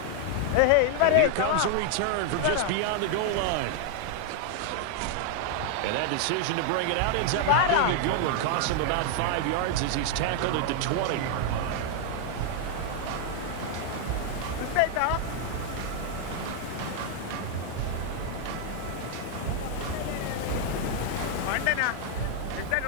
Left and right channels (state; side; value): different; both; correlation 0.00